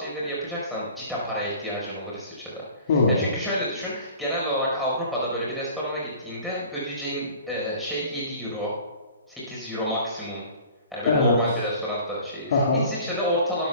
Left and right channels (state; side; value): inverted; both; correlation -0.45